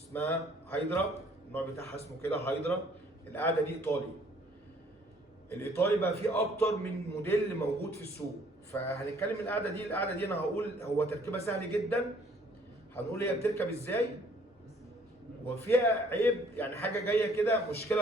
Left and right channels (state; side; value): normal; both; correlation 0.60